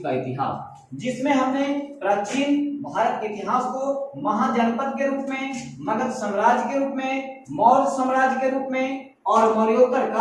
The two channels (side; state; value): both; identical; correlation 1.00